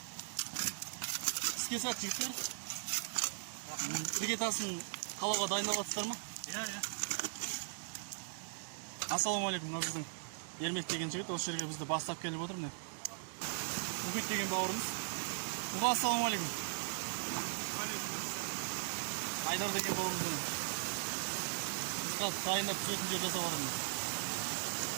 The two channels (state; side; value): silent; left; digital silence